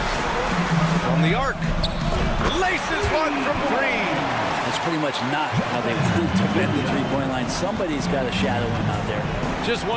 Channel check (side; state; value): both; identical; correlation 1.00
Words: From the arc. Laces one from 3. That's pretty much not how they want to defend the three-point line. Somebody's got to shadow him out there. Just